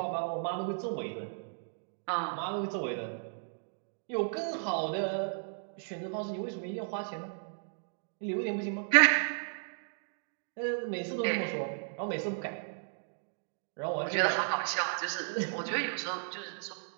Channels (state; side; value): silent; left; digital silence